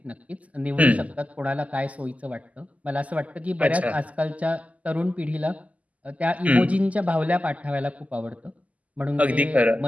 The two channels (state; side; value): late; left; 0.072 ms